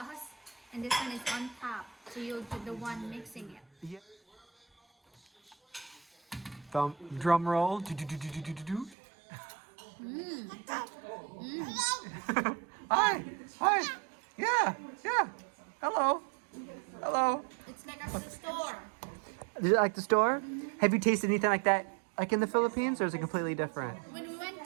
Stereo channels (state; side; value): drops out; left; at 9.0 s